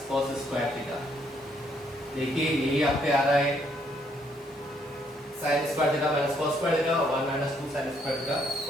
cos square theta. देखिए यही आप पे आ रहा है sign square theta minus cos square theta, 1 minus 2 sine square theta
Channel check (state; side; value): normal; both; correlation 0.70